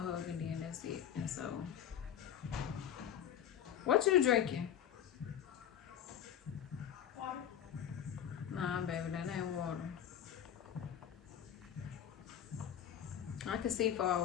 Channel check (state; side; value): quieter; right; 9.7 dB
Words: to hug and then that's it. And so, what you drinking? Water. Nah, baby, that ain't water. I can see far